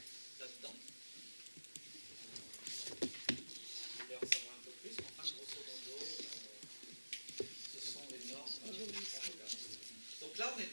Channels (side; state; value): both; inverted; correlation -1.00